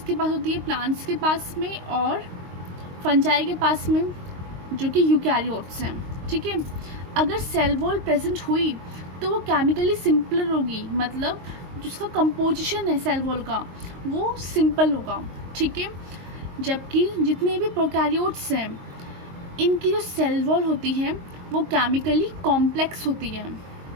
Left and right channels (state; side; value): late; left; 22 ms